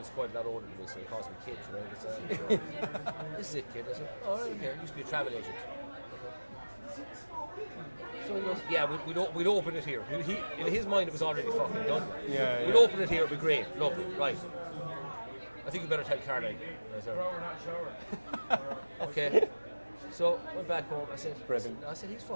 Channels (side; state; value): both; inverted; correlation -1.00